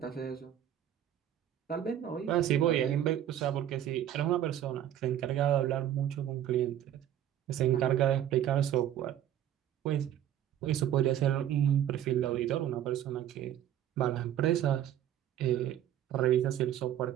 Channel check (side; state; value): left; quieter; 11.1 dB